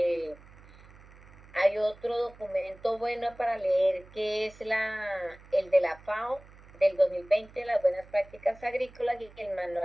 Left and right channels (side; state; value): right; noise; hum, 22 dB below the sound